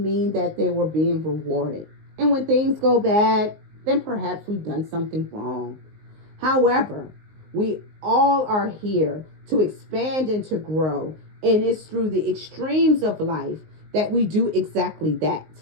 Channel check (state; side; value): late; left; 19 ms